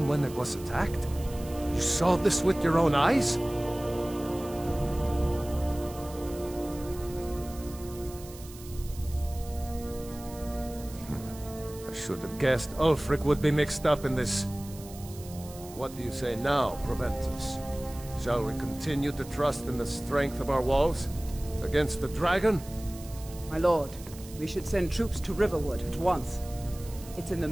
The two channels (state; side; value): noise; right; hiss, 18 dB below the sound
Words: when it was attacked? You saw this with your own eyes? I should have guessed Ulfric would be mixed up in this. What do you say now, Proventus? Shall we continue to trust in the strength of our walls? Against the dragon? My lord, we should send troops to Riverwood at once. It's in the